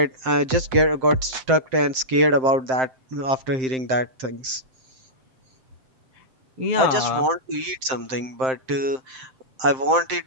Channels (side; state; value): left; late; 7.7 ms